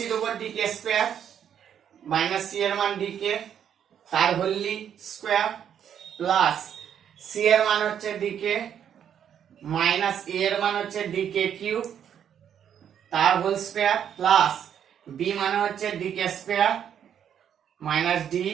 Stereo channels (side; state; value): left; quieter; 8.9 dB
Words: দেবো d k square minus c এর মান d k তার হোলি স্কয়ার প্লাস c এর মান হচ্ছে d k মাইনাস a এর মান হচ্ছে d k কিউব তার হোল স্কয়ার প্লাস b মানে হচ্ছে d k square minus d